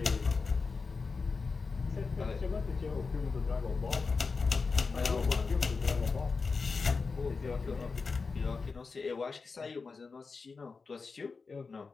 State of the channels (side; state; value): right; quieter; 4.6 dB